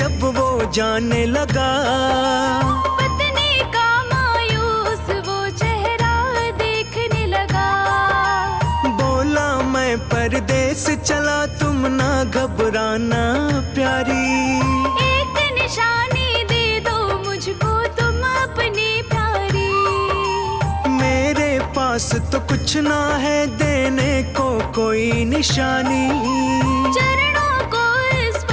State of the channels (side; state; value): both; identical; correlation 1.00